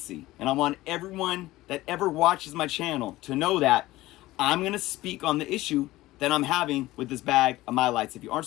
and I want everyone that ever watches my channel to know that I'm going to speak on the issue that I'm having with this bag of Mylites. If you aren't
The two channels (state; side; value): quieter; right; 17.4 dB